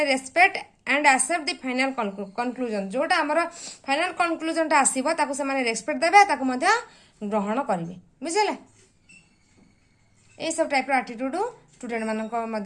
respect and accept the final conclusion जोटा हमर फाइनल कंक्लूजन टा आसीबो ताको सेमाने रेस्पेक्ट देबे ताको मध्य ग्रहण करिवे बुझिले ए सब टाइप रो एटीट्यूड स्टूडेंट मानक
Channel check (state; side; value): identical; both; correlation 1.00